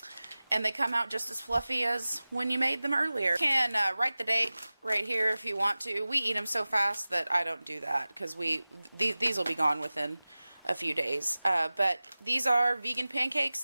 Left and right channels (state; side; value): inverted; both; correlation -0.98